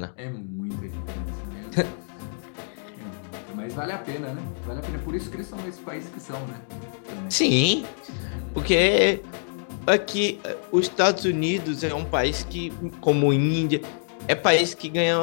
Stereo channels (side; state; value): right; silent; digital silence